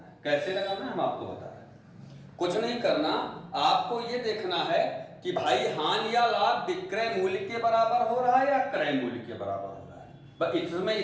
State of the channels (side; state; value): both; identical; correlation 1.00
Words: कैसे लगाना है हम आपको बता रहे हैं। कुछ नहीं करना, आपको ये देखना है कि भाई हानि या लाभ विक्रय मूल्य के बराबर हो रहा है या क्रय मूल्य के बराबर हो रहा है। बस इसमें